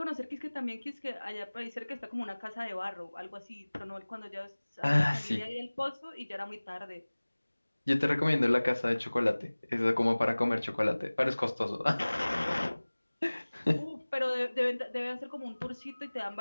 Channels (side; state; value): both; inverted; correlation -1.00